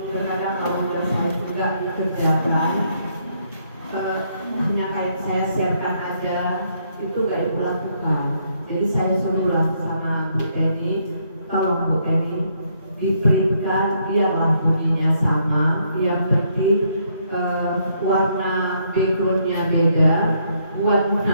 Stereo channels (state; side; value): inverted; both; correlation -0.72